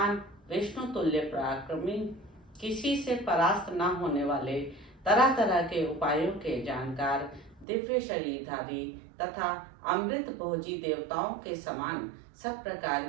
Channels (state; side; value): drops out; left; at 7.7 s